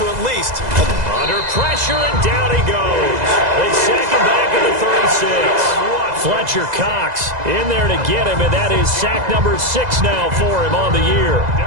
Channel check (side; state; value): left; late; 2.0 ms